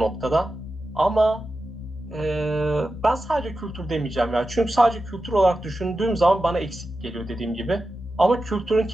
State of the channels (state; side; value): normal; both; correlation 0.91